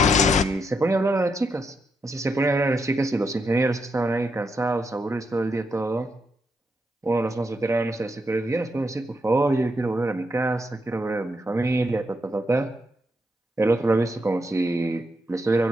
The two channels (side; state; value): both; normal; correlation 0.81